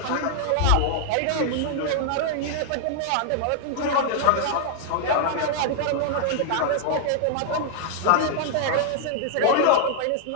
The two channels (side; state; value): both; different; correlation -0.01